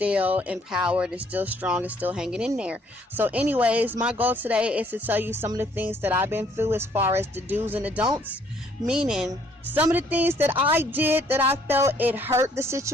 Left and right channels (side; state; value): both; normal; correlation 0.64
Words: empowered and still strong and still hanging in there. So anyways, my goal today is to tell you some of the things that I've been through as far as the do's and the don'ts, meaning some of the things that I did that I felt it hurt the